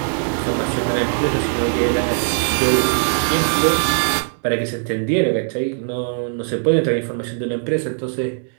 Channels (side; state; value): left; silent; digital silence